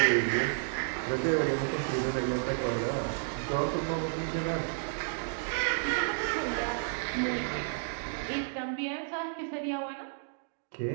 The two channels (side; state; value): left; silent; digital silence